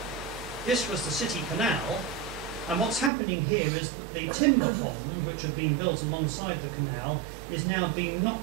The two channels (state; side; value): drops out; left; at 3.1 s